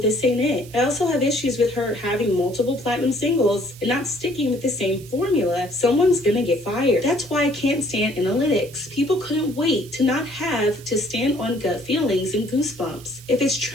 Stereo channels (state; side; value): noise; right; hiss, 20 dB below the sound